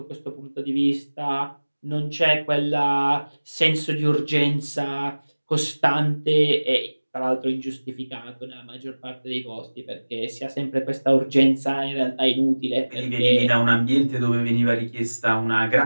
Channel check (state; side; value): inverted; both; correlation -1.00